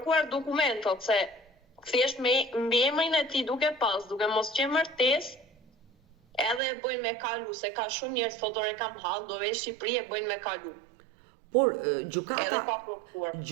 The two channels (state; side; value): drops out; left; at 6.6 s